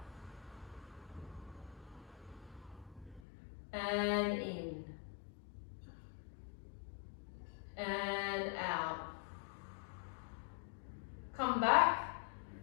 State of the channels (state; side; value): drops out; right; at 3.2 s